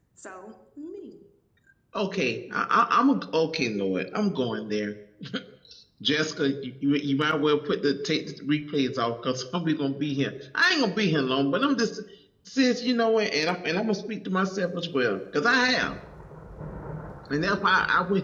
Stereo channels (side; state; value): both; identical; correlation 1.00